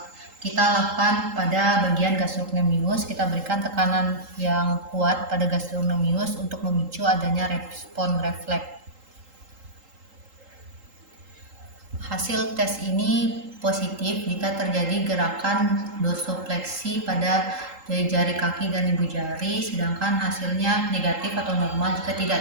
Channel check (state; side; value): late; left; 3.8 ms